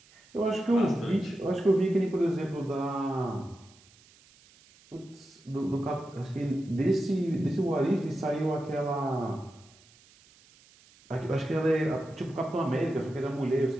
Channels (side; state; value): right; noise; hiss, 27 dB below the sound